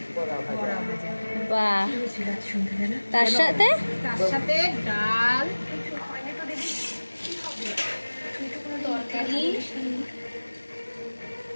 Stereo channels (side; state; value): both; inverted; correlation -1.00